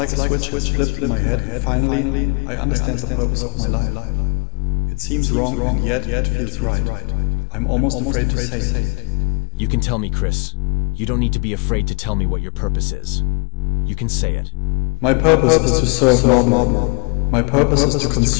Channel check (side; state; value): right; quieter; 34.2 dB